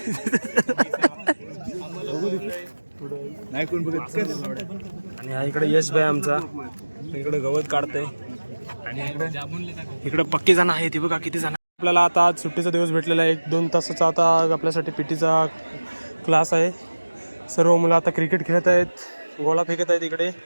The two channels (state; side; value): inverted; both; correlation -1.00